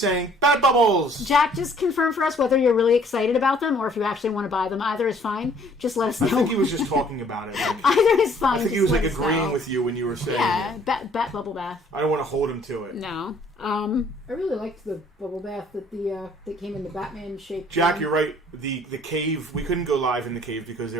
Bat Bubbles. Jack, just confirm for us whether you're really excited about them or if you actually want to buy them. Either is fine. Just let us know. I think he was just talking about it. Like, Either is fine. I think he just was like let us agreeing know. with you when you were saying Yeah, it. bat bubble bath. I don't want to hold him to it. No. I really liked the bubble bath that came in the Batman shape. Jack, you're right. The cave, we couldn't go live in the cave because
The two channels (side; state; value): both; normal; correlation 0.59